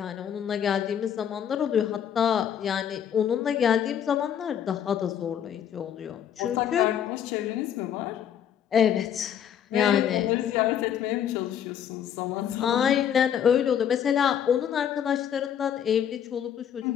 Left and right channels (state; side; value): quieter; right; 9.1 dB